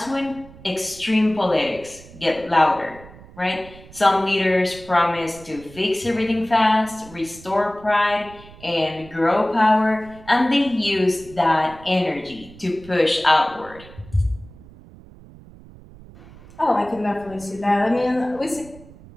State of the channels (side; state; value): right; noise; rumble, 20 dB below the sound